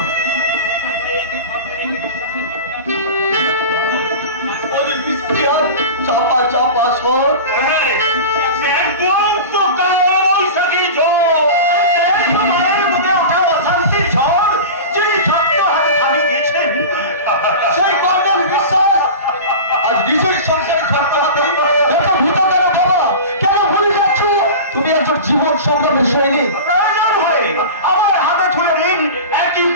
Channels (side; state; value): both; inverted; correlation -0.31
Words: और इसके और चापा चापा स्वर तो कौन सकी जो तुम्हारे मुझे उठा शांति छोड़ जिन्हें छात्र हर खाली देखें সেই কর্ণের বিশ্বাস আজ নিজের সংসারে ছাড়তে হাতে এত ভূত কেন বাবা? কেন ভুলে যাচ্ছ? তুমি একজন জীবন সংগ্রামের সৈনিক। প্রয়োজন হয় আমার হাতে তুলে নিন একই